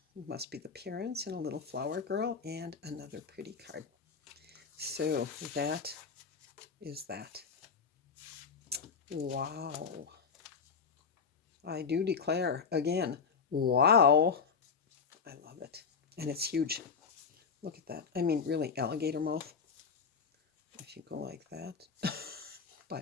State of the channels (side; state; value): right; quieter; 5.8 dB